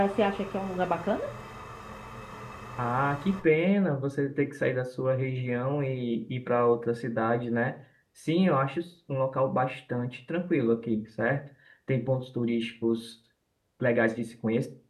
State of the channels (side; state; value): both; identical; correlation 1.00